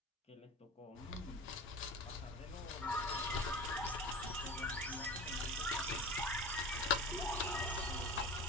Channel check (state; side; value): normal; both; correlation 0.34